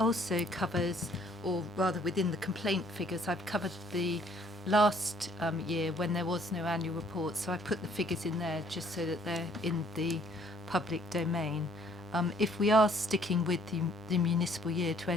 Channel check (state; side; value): normal; both; correlation 0.62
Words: covers, or rather within the complaint figures, I've covered the last year when there was no annual report, so I put the figures in there just so that they're in the public domain. If we are sticking with the municipal year to